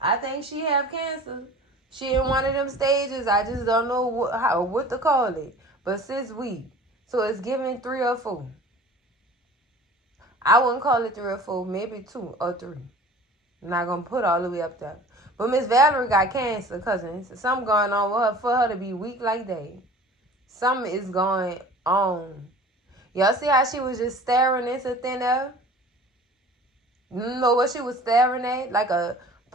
I think she have cancer. She in one of them stages. I just don't know what to call it. But sis, so it's giving 3 or 4. I wouldn't call it 3 or 4, maybe 2 or 3. I'm not gonna put all the way up there. But Miss Valerie got cancer, cousins. Something going on with her for her to be weak like that. Something is going on. Y'all see how she was just staring into thin air? You know what she was staring at? Like a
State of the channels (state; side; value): normal; both; correlation 0.43